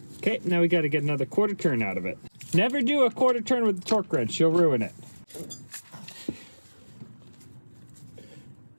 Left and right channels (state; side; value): inverted; both; correlation -1.00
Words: Okay, now we got to get another quarter turn out of it. Never do a quarter turn with the torque wrench, you'll ruin it.